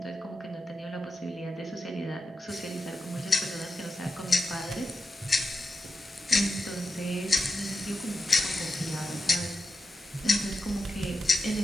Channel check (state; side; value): normal; both; correlation 0.88